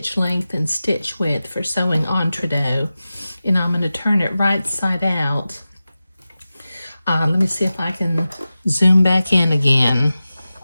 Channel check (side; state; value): both; inverted; correlation -0.94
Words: length and stitch width for sewing entrecôte. And I'm going to turn it right side out. Let me see if I can zoom back in again.